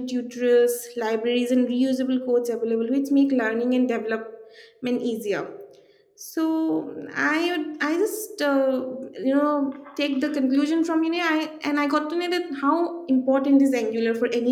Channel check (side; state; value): both; identical; correlation 1.00